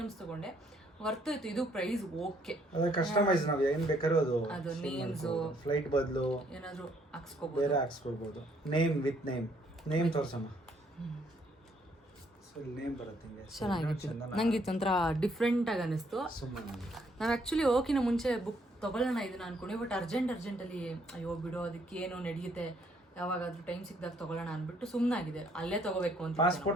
ತೊಗೊಂಡೆ ವರ್ತ್ ಇತ್ತು. ಇದು ಪ್ರೈಸ್ ಓಕೆ. ಅದು ಕಸ್ಟಮೈಸ್ ನಾವು ಏನ್ ಬೇಕಾದ್ರೂ ಅದು ನೇಮ್ಸ್ ಫ್ಲೈಟ್ ಬದಲು ಏನಾದ್ರು ಹಾಕ್ಸ್ಕೋಬಹುದು, ಬೇರೆ ಹಾಕ್ಸ್ಕೊಳ್ಬಹುದು. ನೇಮ್ ವಿತ್ ನೇಮ್ ತೋರ್ಸಮ್ಮ. ಸೊ ನೇಮ್ ಬರುತ್ತೆ ಹಿಂಗೆ. ಚೆನ್ನಾಗಿತ್ತು. ನಂಗೆ ಇದು ಒಂಥರ ಡಿಫ್ರೆಂಟ್ ಆಗಿ ಅನಿಸ್ತು. ನಾವು ಆ್ಯಕ್ಚುಲಿ ಹೋಗಿನ ಮುಂಚೆ ಬುಕ್ ತೊಗೊಳ್ಳೋಣ ಇದನ್ನ ಅನ್ಕೊಂಡೆ, ಬಟ್ ಅರ್ಜೆಂಟಲ್ಲಿ ಅಯ್ಯೋ ಬಿಡೋ ಅದಕ್ಕೆ ಏನೋ ನಡೆಯುತ್ತೆ, ಯಾವಾಗಾದ್ರೂ ಟೈಮ್ ಸಿಕ್ಕಿದಾಗ ತೊಗೊಳ್ಳೋಣ ಅಂದ್ಬಿಟ್ಟು ಸುಮ್ಮನಾಗಿದೆ. ಅಲ್ಲೇ ತೊಗೋಬೇಕು ಅಂತ.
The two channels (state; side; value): normal; both; correlation 0.68